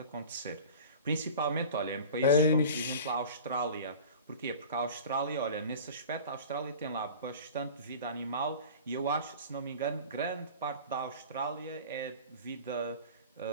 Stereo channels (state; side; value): inverted; both; correlation -0.38